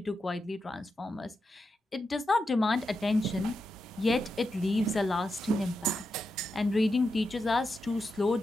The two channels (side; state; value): both; normal; correlation 0.87